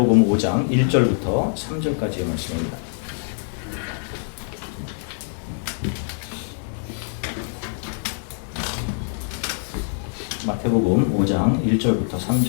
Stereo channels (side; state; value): right; silent; 63 dB below the other